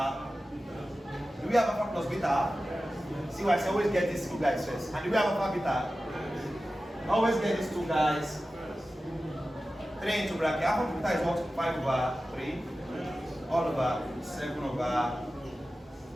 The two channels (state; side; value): normal; both; correlation 0.94